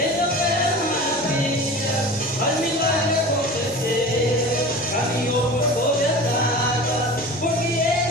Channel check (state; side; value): normal; both; correlation 0.36